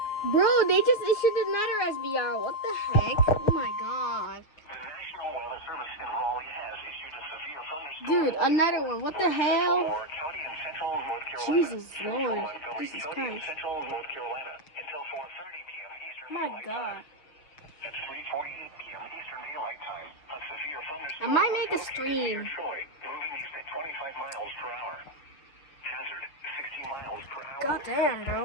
Bro, they just issued another SVR. What the heck? Oh my god. The National Weather Service in Raleigh has issued a severe thunderstorm. Dude, another one. What the hell? County in central North Carolina. Jesus Central Lord. Montgomery Jesus County in Christ. central North Carolina until 4:30 p.m. Eastern My Daylight god. Time. At 3:48 p.m. Eastern Daylight Time, a severe thunderstorm I might make a was located stream. near Troy, moving east at 25 miles per hour. Hazard, 60 miles per hour. God damn, bro.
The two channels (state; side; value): late; right; 6.9 ms